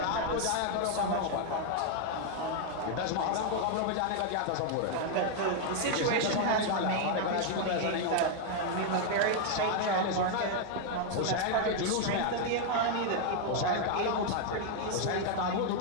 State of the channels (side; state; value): both; different; correlation 0.00